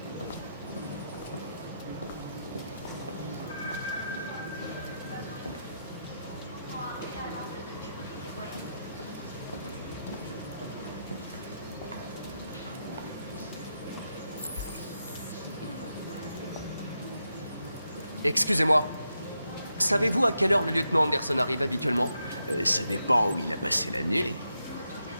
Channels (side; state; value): both; inverted; correlation -0.85